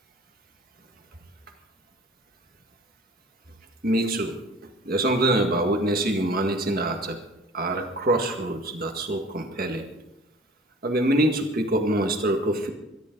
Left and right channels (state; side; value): normal; both; correlation 0.47